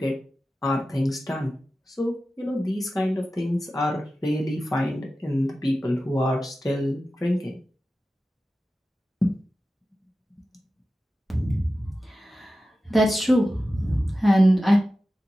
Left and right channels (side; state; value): both; normal; correlation 0.94